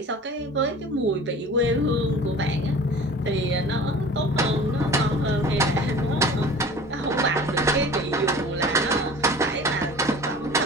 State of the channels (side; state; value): both; normal; correlation 0.42